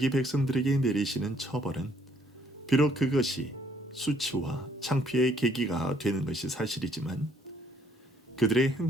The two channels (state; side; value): normal; both; correlation 0.66